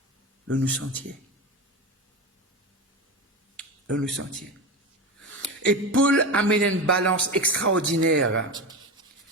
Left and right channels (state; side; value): normal; both; correlation 0.21